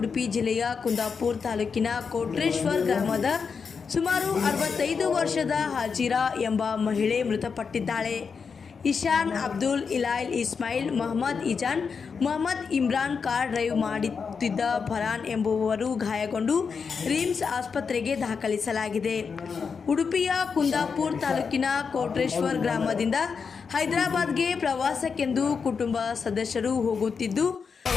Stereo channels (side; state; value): right; quieter; 5.7 dB